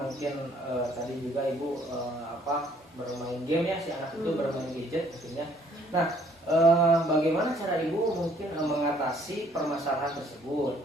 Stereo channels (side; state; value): both; normal; correlation 0.62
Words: tadi juga Ibu bermain game ya, si anak itu bermain gadget mungkin ya. Nah bagaimana cara Ibu mungkin mengatasi permasalahan tersebut?